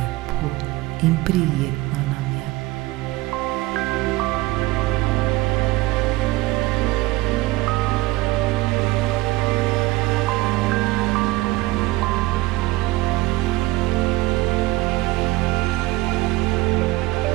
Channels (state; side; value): quieter; left; 19.8 dB